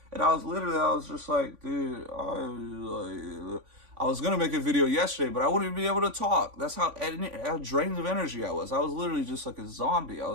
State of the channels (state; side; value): late; left; 3.5 ms